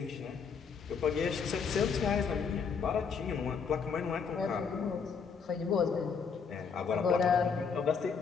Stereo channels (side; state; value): right; quieter; 5.9 dB